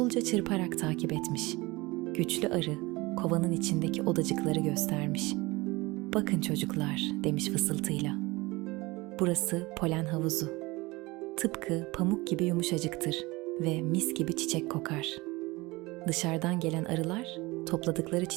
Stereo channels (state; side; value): quieter; left; 22.5 dB